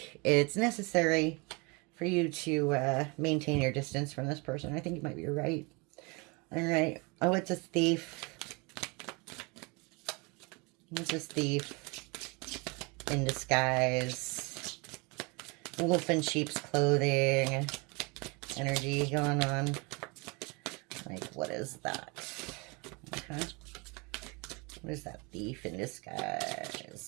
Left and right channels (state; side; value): quieter; left; 28.9 dB